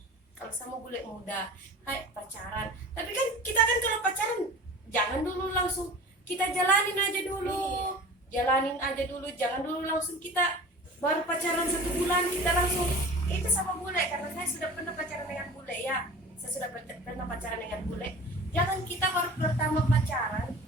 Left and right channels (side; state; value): both; normal; correlation 0.39